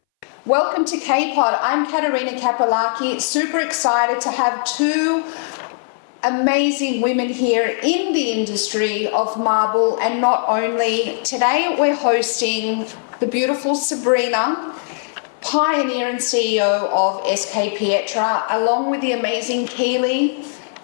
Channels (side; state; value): right; silent; 63 dB below the other